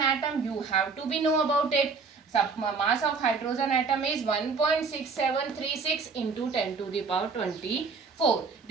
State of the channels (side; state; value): left; quieter; 4.8 dB